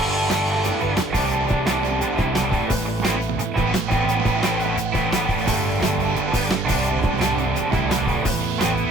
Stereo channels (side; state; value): both; normal; correlation 0.62